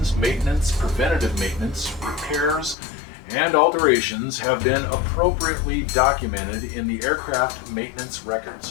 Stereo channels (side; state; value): right; drops out; at 2.8 s